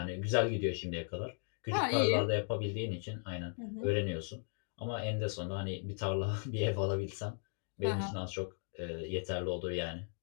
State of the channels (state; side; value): silent; right; 53 dB below the other